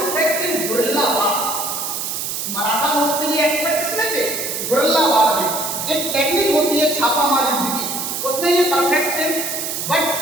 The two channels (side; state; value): right; noise; hiss, 3 dB below the sound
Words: इन गुरिल्ला वार। मराठा लोग के लिए एक्सपर्ट किसमें थे? गुरिल्ला वार में। एक टेक्निक होती है छापामार युद्ध की, उसमें ये परफेक्ट थे। But